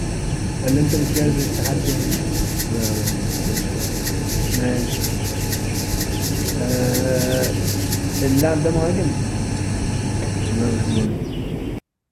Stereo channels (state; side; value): identical; both; correlation 1.00